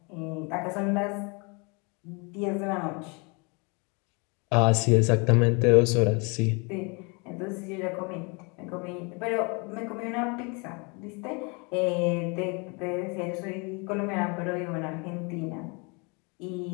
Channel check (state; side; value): quieter; right; 31.2 dB